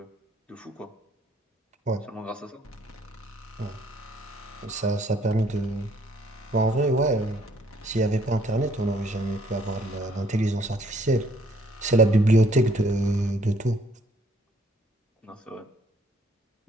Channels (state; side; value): normal; both; correlation 0.64